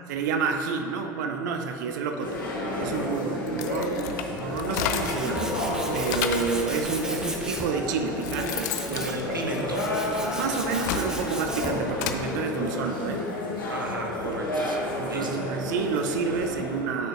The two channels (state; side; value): normal; both; correlation 0.16